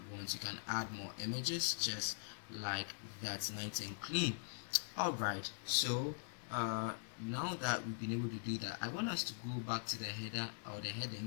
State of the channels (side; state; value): right; silent; digital silence